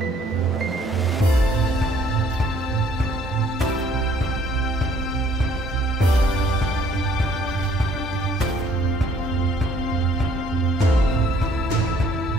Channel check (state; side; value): normal; both; correlation 0.61